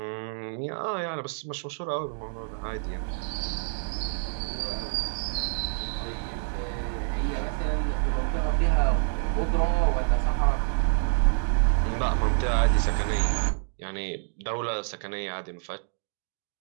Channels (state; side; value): silent; left; 60 dB below the other